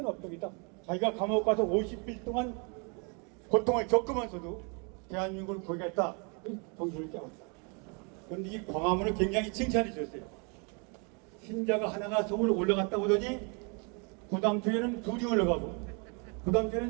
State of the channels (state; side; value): quieter; left; 34.8 dB